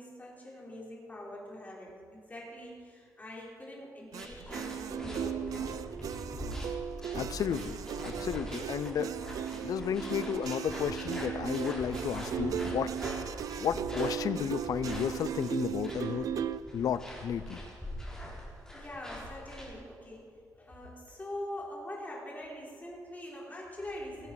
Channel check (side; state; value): both; normal; correlation 0.58